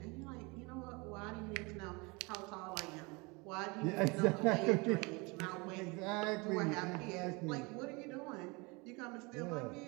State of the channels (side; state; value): left; quieter; 27.2 dB